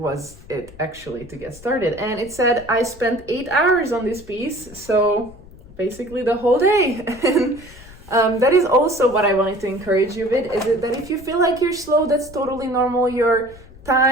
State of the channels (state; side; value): noise; left; rumble, 20 dB below the sound